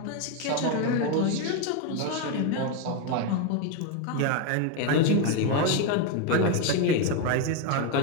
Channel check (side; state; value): both; different; correlation 0.02